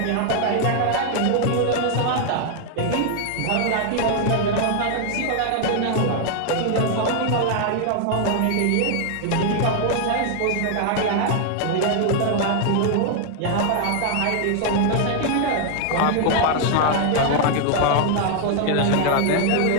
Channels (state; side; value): different; both; correlation 0.00